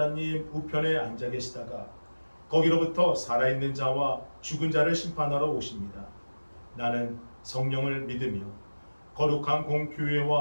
우편에 앉아 계시다가 거기로부터 살아있는 자와 죽은 자를 심판하러 오십니다. 나는 성령을 믿으며 거룩한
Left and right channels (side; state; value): both; inverted; correlation -1.00